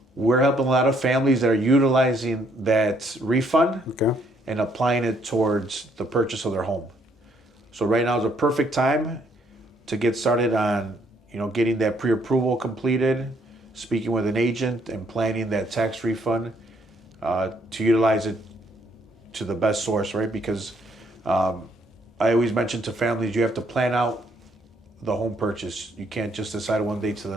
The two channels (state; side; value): normal; both; correlation 0.68